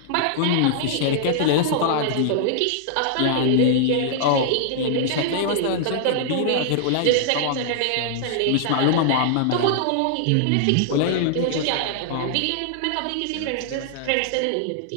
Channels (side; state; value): both; different; correlation -0.01